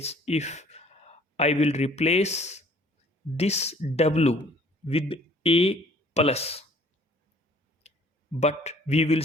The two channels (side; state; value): both; normal; correlation 0.56